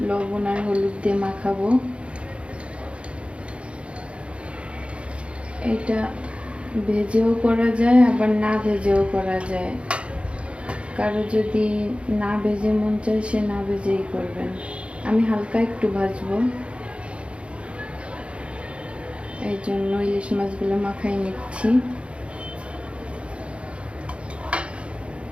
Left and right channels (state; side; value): late; left; 0.059 ms